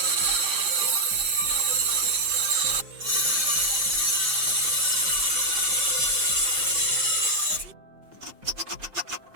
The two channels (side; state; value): left; late; 5.8 ms